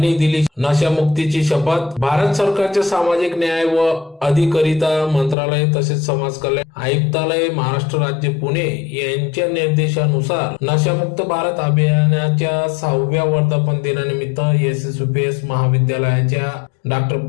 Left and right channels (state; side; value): drops out; right; at 5.4 s